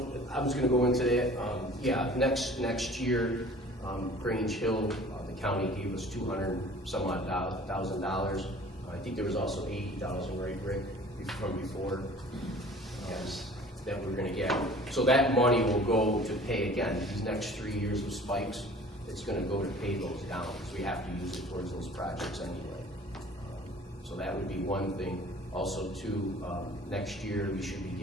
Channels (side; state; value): both; normal; correlation 0.47